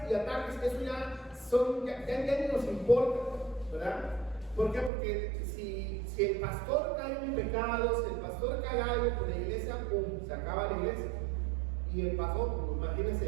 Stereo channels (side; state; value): left; drops out; at 4.9 s